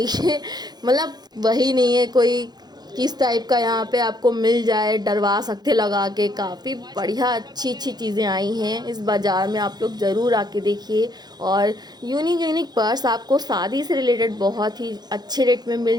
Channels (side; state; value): left; late; 0.20 ms